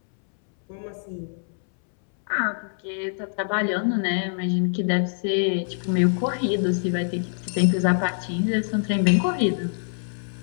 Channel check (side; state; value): right; silent; 62 dB below the other